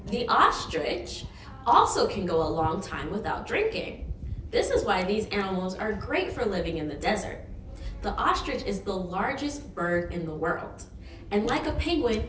The ostrich also can go a long time without drinking. This is why these animals are great for living in the desert. The ostrich is the largest bird in the world. And like a penguin,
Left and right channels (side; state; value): both; identical; correlation 1.00